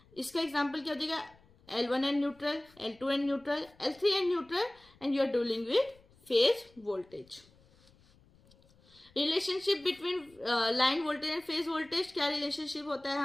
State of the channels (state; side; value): noise; left; rumble, 29 dB below the sound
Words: इसका एग्जाम्पल क्या हो जाएगा? L1 and neutral, L2 and neutral, L3 and neutral, and you are dealing with phase voltage. Relationship between line voltage and phase voltage, क्या रिलेशनशिप होता है